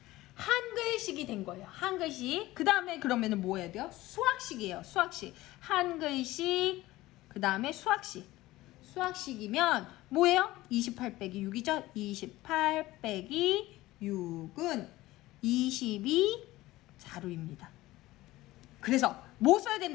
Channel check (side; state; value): right; quieter; 17.7 dB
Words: 한글식이 된 거예요. 한글식. 그 다음에 그러면은 뭐 해야 돼요? 수학식이에요. 수학식. 한글식, 그 다음에 수학식. 수학식이면 뭐예요? 28 빼기 6이죠? 28 빼기 6은 22자루입니다. 그래서 뭐 써야